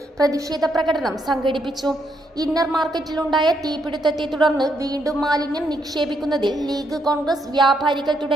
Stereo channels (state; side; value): normal; both; correlation 0.76